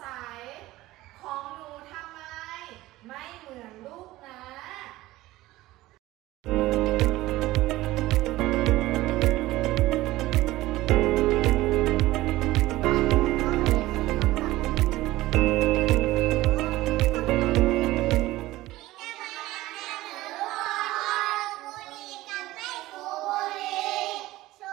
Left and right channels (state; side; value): quieter; left; 17.4 dB